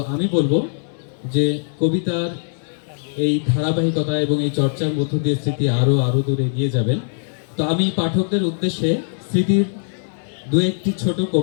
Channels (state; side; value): silent; right; 59 dB below the other